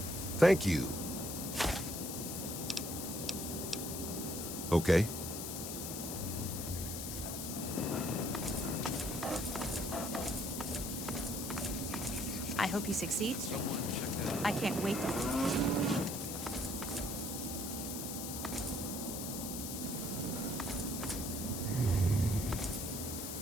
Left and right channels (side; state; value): left; noise; hiss, 5 dB below the sound